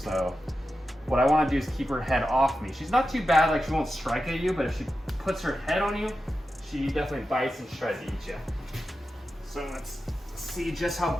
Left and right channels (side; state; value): both; normal; correlation 0.91